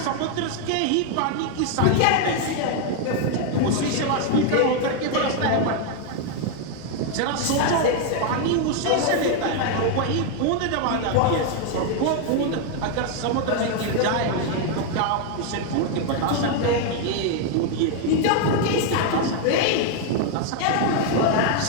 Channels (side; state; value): both; different; correlation 0.01